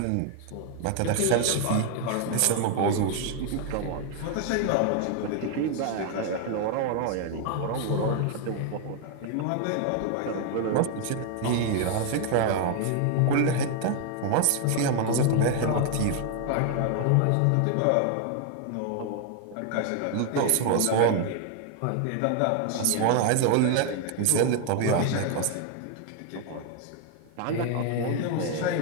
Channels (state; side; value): different; both; correlation 0.00